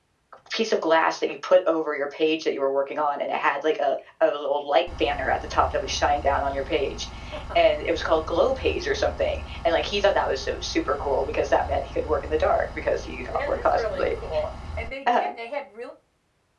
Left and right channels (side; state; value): both; identical; correlation 1.00